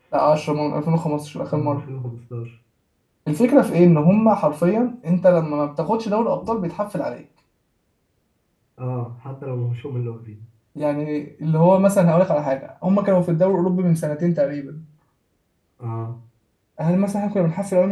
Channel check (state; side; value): identical; both; correlation 1.00